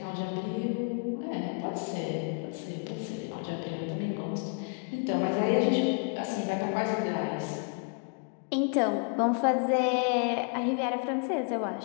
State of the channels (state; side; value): quieter; right; 38.6 dB